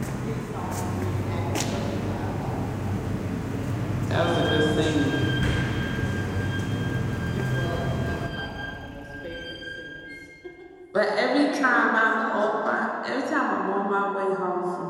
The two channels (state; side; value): identical; both; correlation 1.00